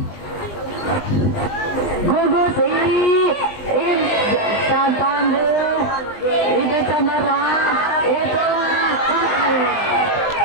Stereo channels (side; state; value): right; late; 20 ms